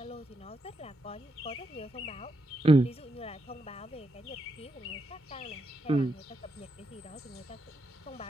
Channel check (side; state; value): both; normal; correlation 0.82